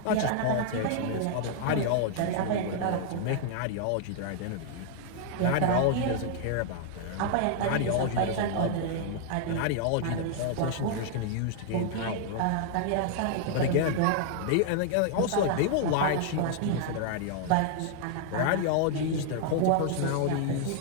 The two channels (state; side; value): different; both; correlation -0.01